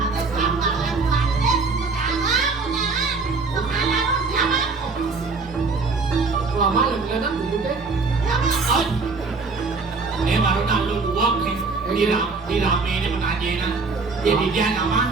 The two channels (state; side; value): quieter; left; 4.2 dB